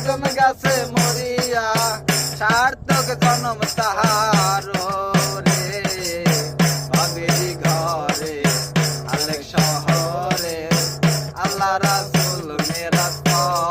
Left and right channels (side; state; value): both; identical; correlation 1.00